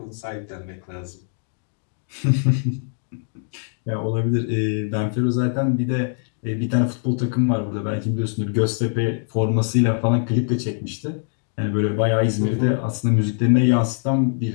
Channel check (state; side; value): silent; right; 64 dB below the other